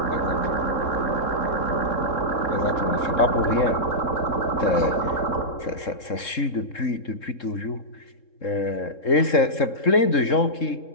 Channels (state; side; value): late; right; 3.7 ms